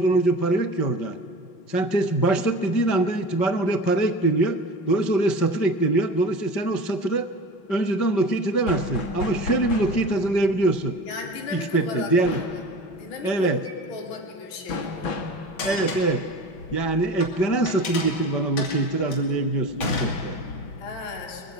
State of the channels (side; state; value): right; late; 5.2 ms